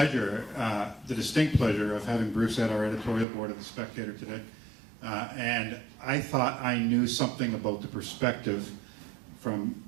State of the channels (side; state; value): left; drops out; at 3.2 s